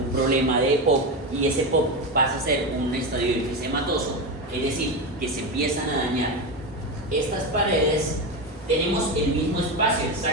problema de EPOC y ese EPOC pasa a ser un estadio enfisematoso, es decir, que se empiezan a dañar estas paredes, tenemos el mismo espacio, el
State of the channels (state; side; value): normal; both; correlation 0.16